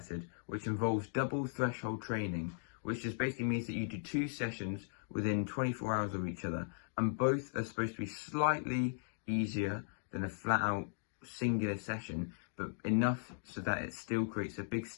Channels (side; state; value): right; silent; digital silence